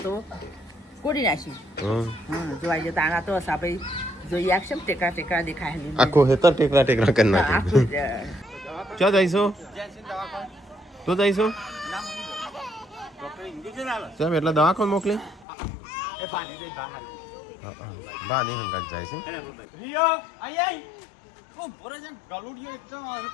તો ગોળી નાખી. હમ. હા જોવાઈ જતા આના તો આપણે જોઈએ આખશે ને ટેકરા ટેકરા દેખાય. આખું હેતર ટેકરા ટેકરા કરી હા, આખું નાખ્યું ક્યાં જઈશું તું જઈશું સાહેબ એટલે દવાખાને મોકલી બા નહીં હંગાત જાય છે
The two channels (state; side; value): drops out; right; at 15.5 s